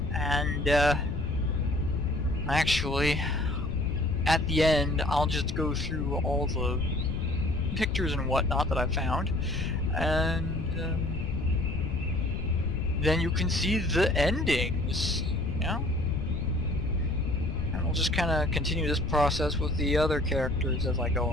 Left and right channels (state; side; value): noise; left; rumble, 3 dB below the sound